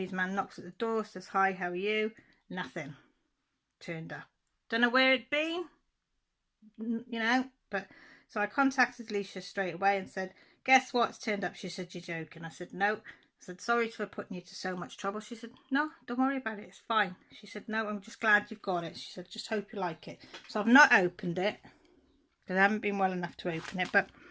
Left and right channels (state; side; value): identical; both; correlation 1.00